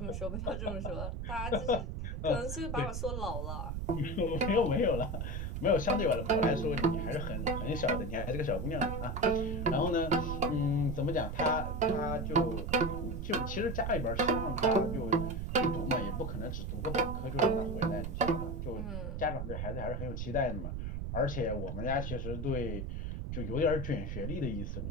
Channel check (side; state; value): right; noise; rumble, 4 dB below the sound